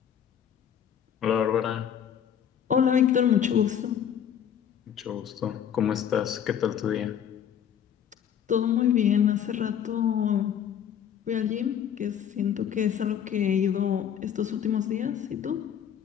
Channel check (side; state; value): right; quieter; 9.0 dB